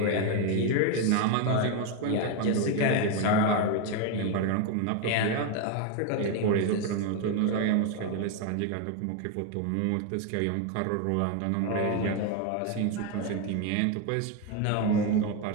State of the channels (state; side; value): different; both; correlation 0.02